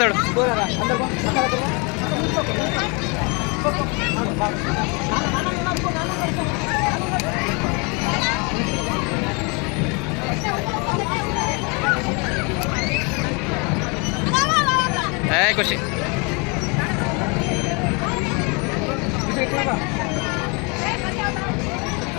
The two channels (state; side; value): quieter; right; 31.3 dB